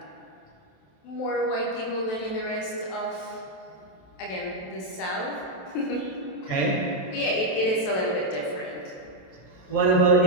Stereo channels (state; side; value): late; right; 27 ms